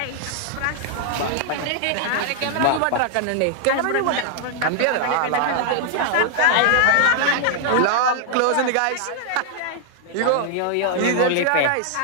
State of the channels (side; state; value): both; different; correlation 0.00